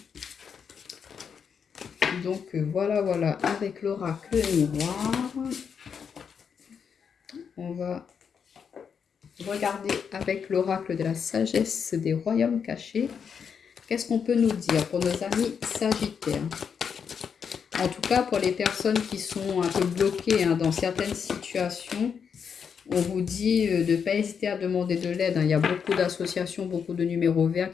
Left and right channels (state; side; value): quieter; right; 6.8 dB